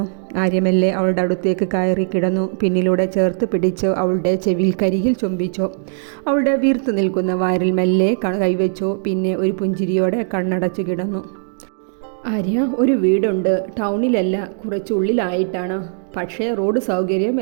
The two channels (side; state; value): left; silent; digital silence